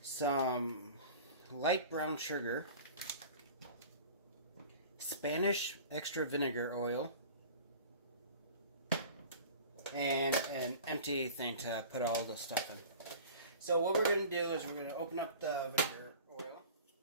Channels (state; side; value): inverted; both; correlation -0.41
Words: some light brown sugar, Spanish extra vinegar oil, and an empty thing to put all the stuff in. So what we're going to do is we're going to open up the vinegar oil.